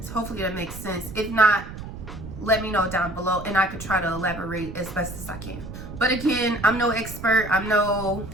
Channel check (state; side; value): noise; right; rumble, 11 dB below the sound